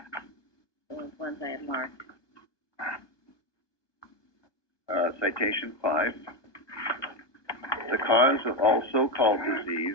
Those ones I have marked. Citation 5. The cause of all so-called disease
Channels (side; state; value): right; late; 1.2 ms